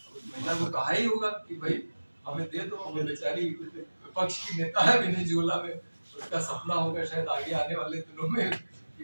को कहा ही होगा कि भाई हमें दे दो, वो बेचारी विपक्ष की नेता है वेनेजुएला में, उसका सपना होगा शायद आगे आने वाले दिनों में कि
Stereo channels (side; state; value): both; inverted; correlation -1.00